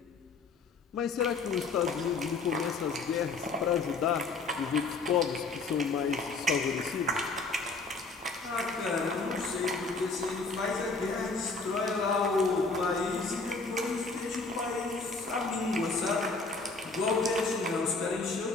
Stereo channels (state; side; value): quieter; right; 3.9 dB